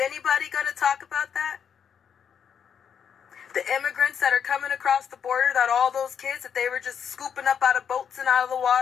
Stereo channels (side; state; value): right; quieter; 7.7 dB